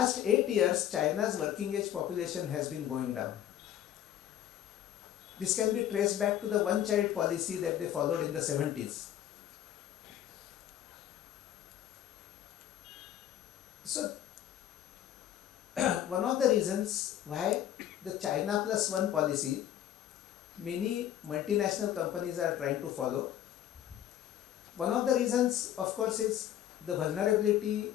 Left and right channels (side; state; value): right; quieter; 11.2 dB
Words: 8 years, China's working age population has been going down. This can be traced back to the one-child policy that they followed in the 70s. So, one of the reasons why the China plus one policy many multinational companies are trying to follow. One of the reasons, of course, is the vulnerability